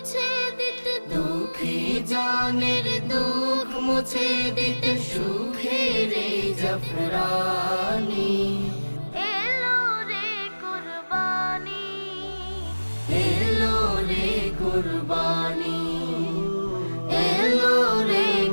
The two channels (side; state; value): both; inverted; correlation -1.00